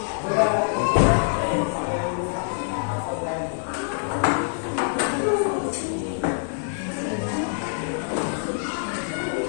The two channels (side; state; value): right; silent; digital silence